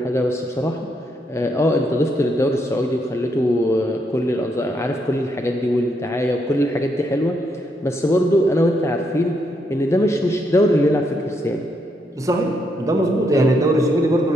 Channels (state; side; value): normal; both; correlation 0.77